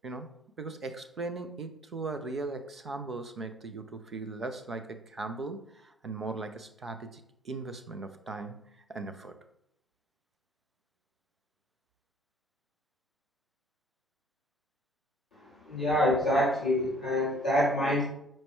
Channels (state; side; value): normal; both; correlation 0.56